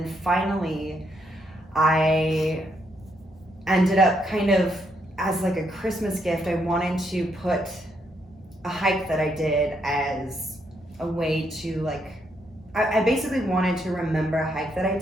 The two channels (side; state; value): both; normal; correlation 0.76